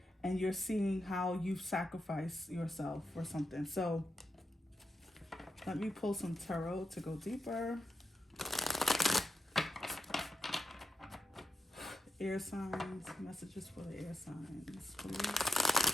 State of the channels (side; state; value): both; normal; correlation 0.87